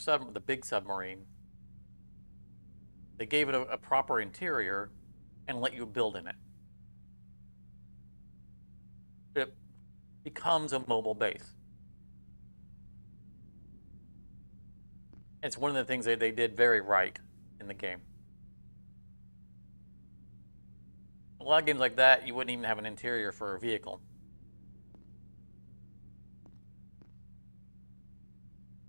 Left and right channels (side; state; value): both; inverted; correlation -1.00